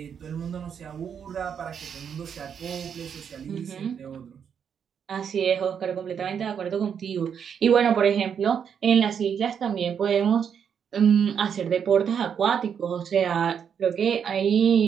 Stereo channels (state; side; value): quieter; left; 7.6 dB